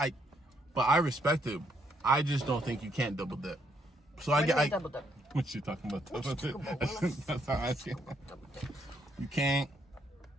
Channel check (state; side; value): normal; both; correlation 0.73